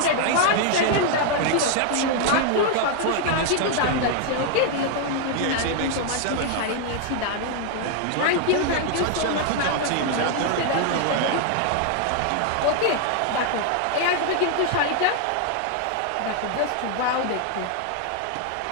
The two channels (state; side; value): different; both; correlation 0.00